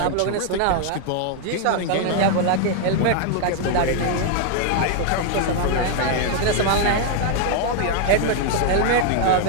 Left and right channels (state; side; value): different; both; correlation 0.00